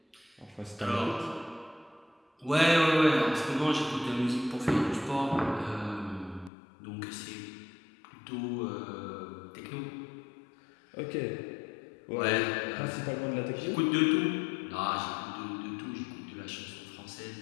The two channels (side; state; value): right; drops out; at 6.5 s